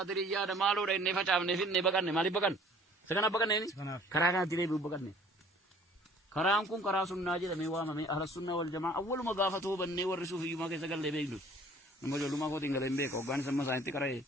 دمالو رين نفاجأ نفين نبكان مالي بكان سكنا بكان نيني كرانا تري بكان نيني كرام كون كراسون ناجي دميوا مامي أهل السنة والجماعة أول ما قافته بني ورسوا في يوم كيسة قال لبيجلس نمو جلو ما كو تينغ لمبه كوغان سما ساينتي كراي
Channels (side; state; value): both; normal; correlation 0.53